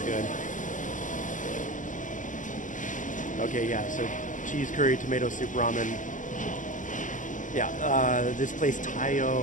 good. Okay, yeah, so cheese curry, tomato soup, ramen. Yeah, this place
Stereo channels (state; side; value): late; right; 0.37 ms